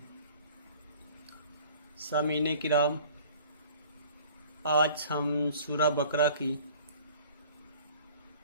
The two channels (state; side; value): inverted; both; correlation -0.48